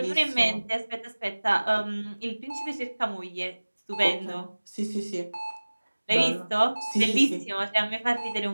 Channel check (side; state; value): both; inverted; correlation -1.00